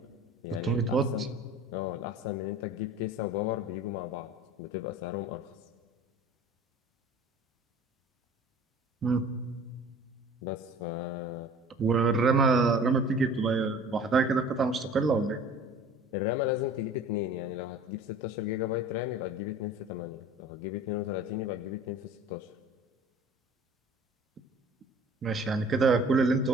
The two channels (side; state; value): both; normal; correlation 0.45